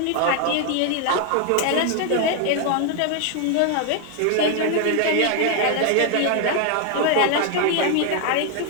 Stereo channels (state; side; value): different; both; correlation 0.00